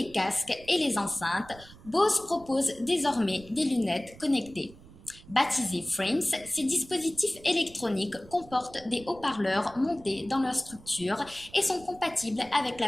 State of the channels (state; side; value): noise; right; rumble, 21 dB below the sound